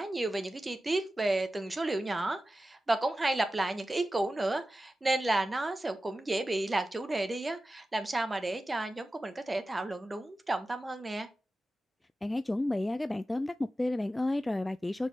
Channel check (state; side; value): normal; both; correlation 0.94